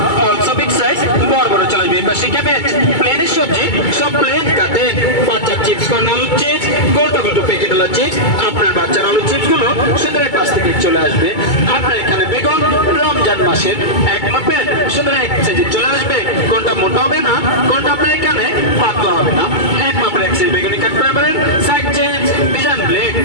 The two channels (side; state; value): right; late; 2.3 ms